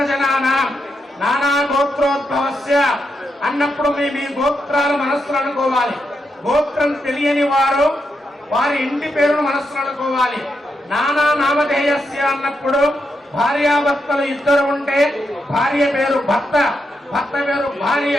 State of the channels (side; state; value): both; normal; correlation 0.83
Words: నానా గోత్రోద్భవస్య అన్నప్పుడు మీ గోత్రాలు మనస్సులు అనుకోవాలి. గోత్రం తెలియని వారు వారి ఇంటి పేరును మనస్సులు అనుకోవాలి. నానా నామధేయస్య అన్నప్పుడు భార్యాభర్తలు ఇద్దరు ఉంటే భార్య పేరు భర్త, భర్త పేరు భార్య